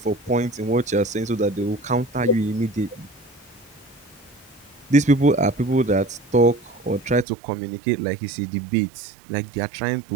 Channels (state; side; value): drops out; left; at 7.2 s